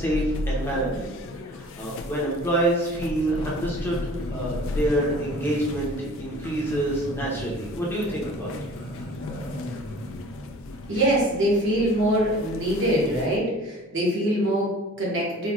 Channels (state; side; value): normal; both; correlation 0.47